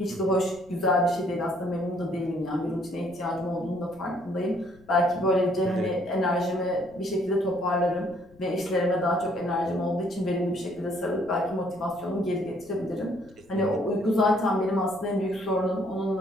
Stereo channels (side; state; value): left; noise; rumble, 27 dB below the sound